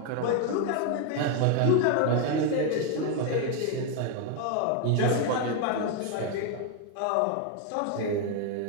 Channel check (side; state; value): both; different; correlation 0.01